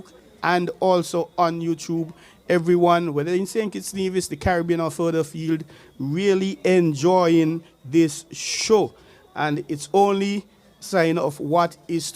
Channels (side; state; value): both; identical; correlation 1.00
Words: and also on YouTube, everyone, whether in St. Kitts Nevis, the Caribbean or further afield, really enjoying this show. And it's only sign of what is